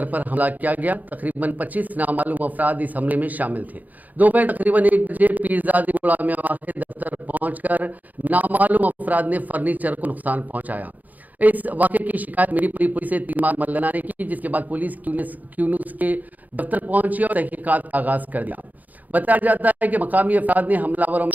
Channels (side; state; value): left; late; 0.080 ms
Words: पर हमला किया गया। तकरीबन 25 नामालूम अफराद इस हमले में शामिल थे। दोपहर तकरीबन 1 बजे पीरजादी गुड़ा में वाक़ दफ्तर पहुंचकर नामालूम अफराद ने फर्नीचर को नुकसान पहुंचाया। इस वाक़े की शिकायत मीरीपुरी पुलिस से तीन मल्लाना ने की, जिसके बाद पुलिस क्यू न्यूज के दफ्तर पहुंची और तहकीकात का आगाज कर दिया। बताया जाता है कि मकामी अफराद ने हमलावरों